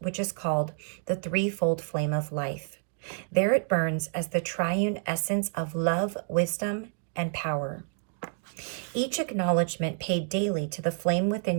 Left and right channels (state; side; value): silent; left; 59 dB below the other